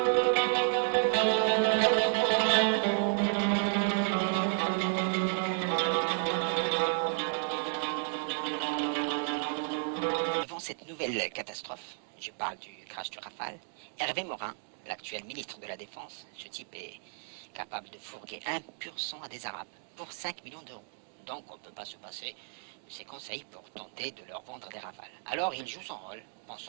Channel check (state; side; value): silent; left; 56 dB below the other